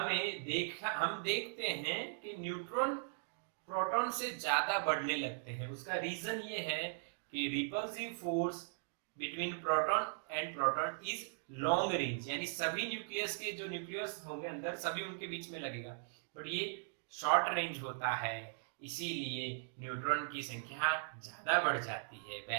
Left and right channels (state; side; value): silent; left; digital silence